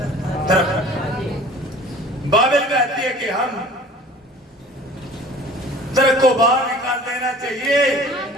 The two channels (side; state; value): both; normal; correlation 0.46